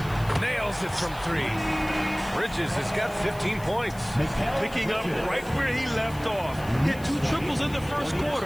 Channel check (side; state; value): left; noise; hiss, 20 dB below the sound